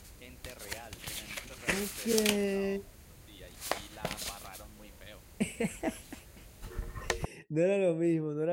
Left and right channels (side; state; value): both; identical; correlation 1.00